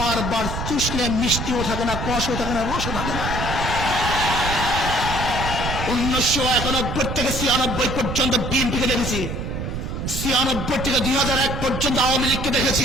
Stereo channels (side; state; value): right; noise; rumble, 4 dB below the sound